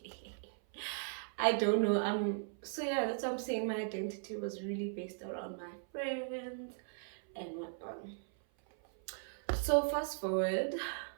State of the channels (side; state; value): left; silent; 53 dB below the other